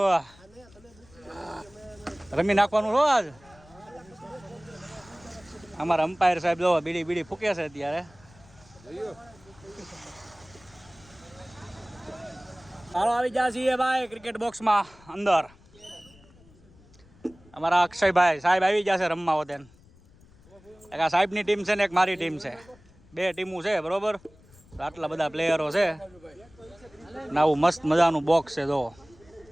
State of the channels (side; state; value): left; noise; rumble, 26 dB below the sound